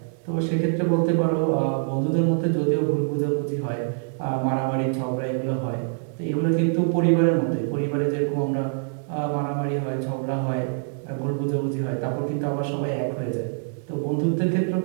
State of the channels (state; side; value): silent; left; 62 dB below the other